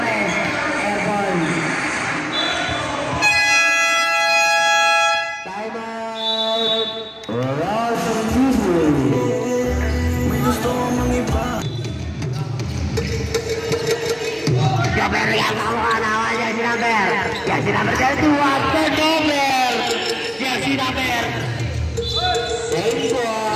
Joker yang melakukan awal jersey number 31 turnover. Jersey number same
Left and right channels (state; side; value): identical; both; correlation 1.00